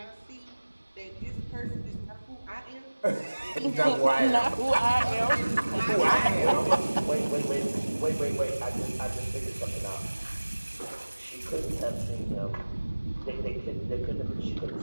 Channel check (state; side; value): inverted; both; correlation -1.00